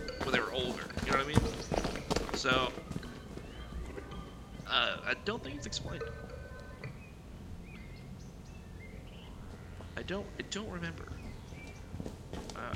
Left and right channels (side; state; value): both; identical; correlation 1.00